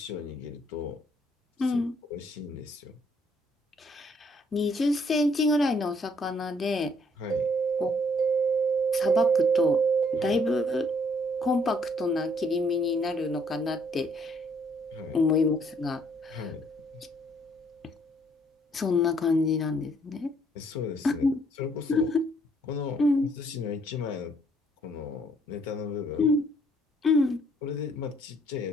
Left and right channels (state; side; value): normal; both; correlation 0.66